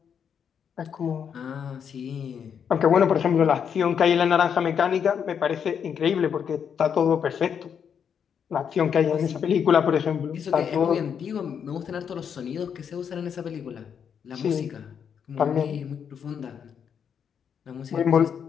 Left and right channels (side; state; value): right; quieter; 7.6 dB